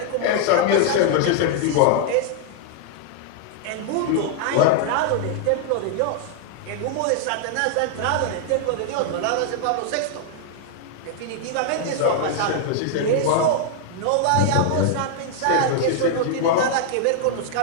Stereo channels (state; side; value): different; both; correlation 0.00